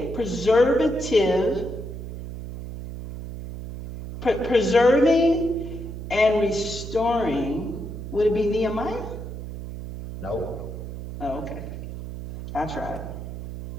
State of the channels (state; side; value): noise; right; hum, 9 dB below the sound